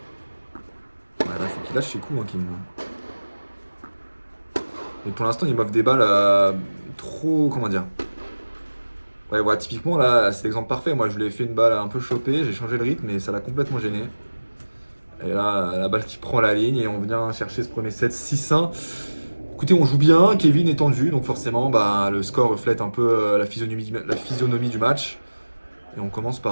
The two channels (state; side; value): inverted; both; correlation -1.00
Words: Ouais, là, faut qu'il lâche ses coups, hein, Kevin. Mais pour l'instant, il m'offre des balles trop. Comment dire? Ouais, typiquement, là, c'est l'exemple parfait. Moi, je lui ai fait une balle un peu chopée, j'ai changé le rythme, mais ça l'a complètement gêné. Et là, la balle qui prend la ligne, et on vient chercher ce premier set 6-1. Écoutez, on joue bien, Kevin est tendu, donc forcément, bah, le score reflète un peu la physionomie du match. Et on commence